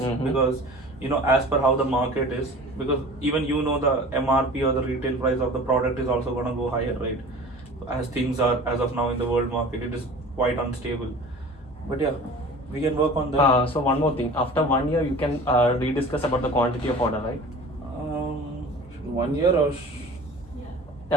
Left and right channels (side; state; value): both; normal; correlation 0.41